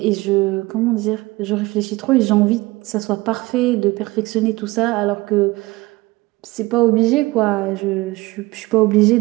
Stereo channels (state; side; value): quieter; left; 21.1 dB